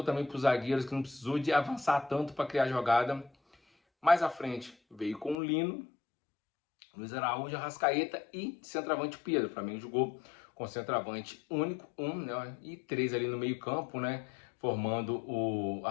também para os zagueiros que não precisou de avançar tanto para criar jogada. Mais à frente veio com o Lino, Luiz Araújo, Arrascaeta e centroavante Pedro. O Flamengo jogou com centroavante único, né, e 3 ali no meio campo, né, formando o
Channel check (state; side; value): drops out; right; at 5.4 s